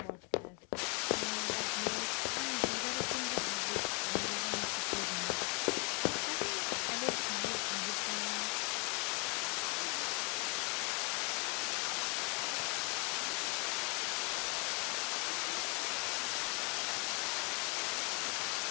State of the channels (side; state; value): right; quieter; 33.9 dB